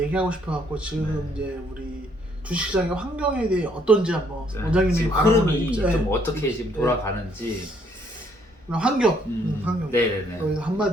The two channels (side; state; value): both; normal; correlation 0.67